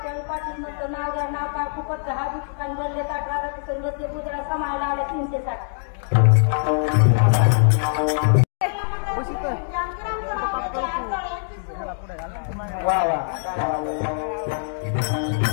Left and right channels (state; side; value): silent; right; digital silence